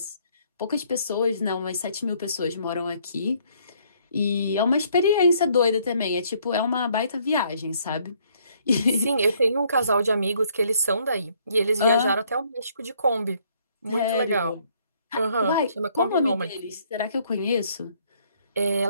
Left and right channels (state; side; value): inverted; both; correlation -0.65